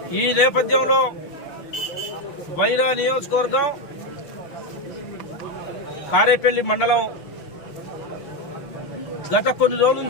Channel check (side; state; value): right; late; 6.5 ms